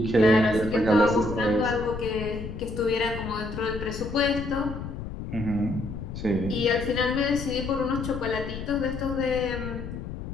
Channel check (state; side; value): noise; left; rumble, 8 dB below the sound